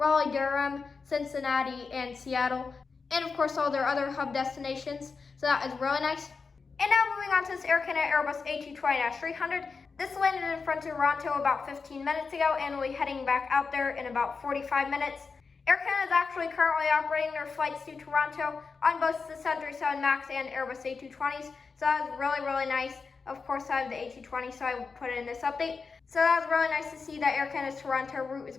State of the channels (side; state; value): right; quieter; 4.8 dB